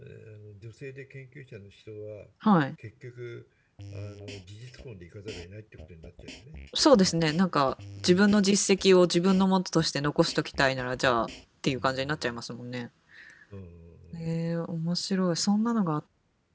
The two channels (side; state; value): both; identical; correlation 1.00